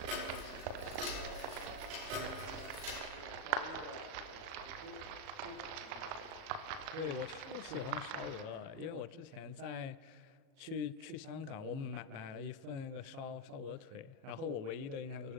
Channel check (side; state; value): left; late; 37 ms